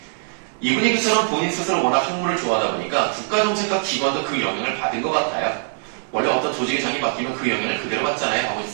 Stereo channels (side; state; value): left; silent; digital silence